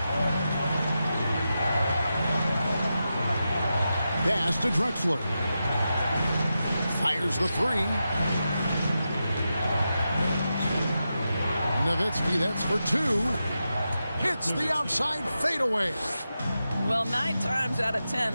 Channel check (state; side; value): inverted; both; correlation -0.89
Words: Pass to Drexler. Fires the three. Nowitzki, that's for two. Hits the outside fadeaway. Well, 9 times out of 10,